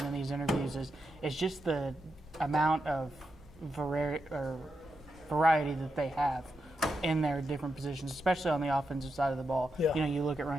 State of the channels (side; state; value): both; normal; correlation 0.86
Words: in these interviews is just the amount of variety that they have in their different positions, especially on the offensive side of the ball. Yeah. You look at